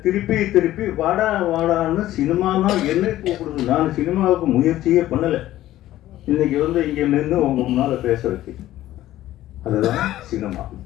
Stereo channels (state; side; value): quieter; right; 14.4 dB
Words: திருப்பி வாடான்னு சினிமா தான் என்னை கூப்பிடுது. நான் சினிமாவுக்கு முயற்சியே பண்ணலை. இன்னைக்கு வந்து இங்கே நின்று உங்க முன்னால பேச வச்சு, அதுதான் சினிமா.